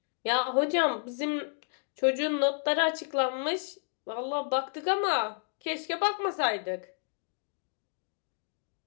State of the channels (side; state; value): right; silent; digital silence